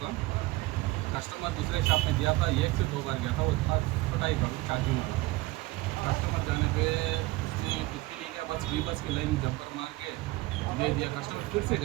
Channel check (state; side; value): quieter; left; 20.4 dB